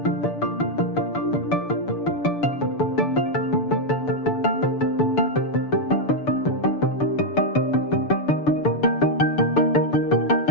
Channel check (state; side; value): late; right; 6.8 ms